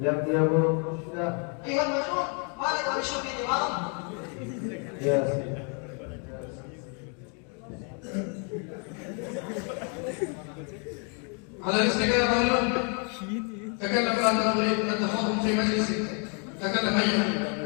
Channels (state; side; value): quieter; right; 38.3 dB